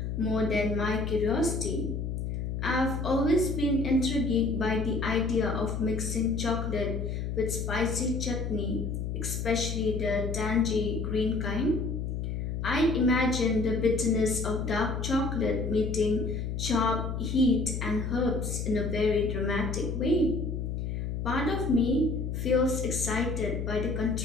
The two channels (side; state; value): left; noise; hum, 3 dB below the sound